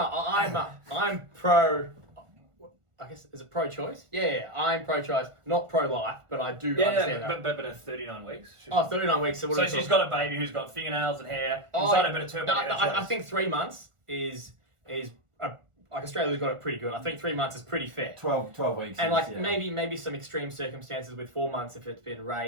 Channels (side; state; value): left; late; 1.4 ms